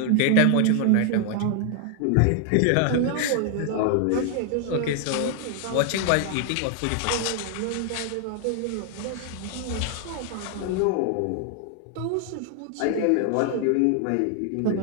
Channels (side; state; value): both; different; correlation 0.00